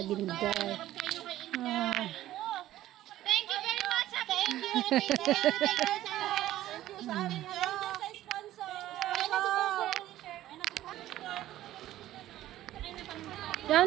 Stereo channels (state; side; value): quieter; left; 14.1 dB